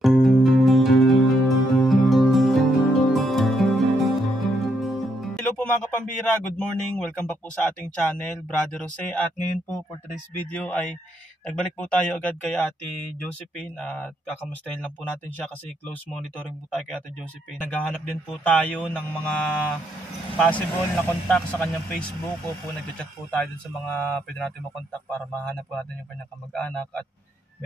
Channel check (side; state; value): both; normal; correlation 0.76